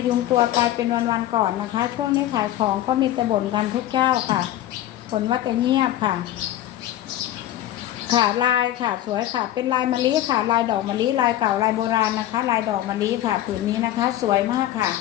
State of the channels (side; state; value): right; quieter; 13.4 dB